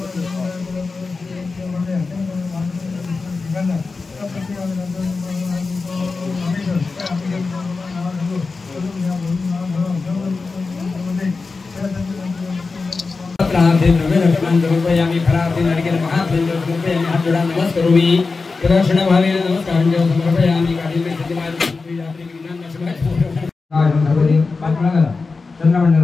फलार्थे द्रव्यदर्शनान् समर्पयामि फलार्थे नारिकेलमहाफलं समर्पयामि हात जोडा नमस्करोमि प्रदक्षिणभावेन नमस्कारं समर्पयामि कालिमे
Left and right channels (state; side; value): quieter; right; 4.1 dB